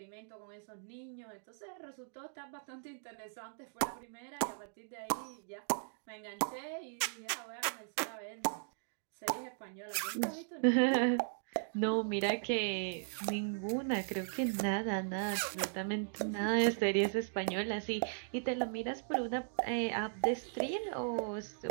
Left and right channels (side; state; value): left; silent; digital silence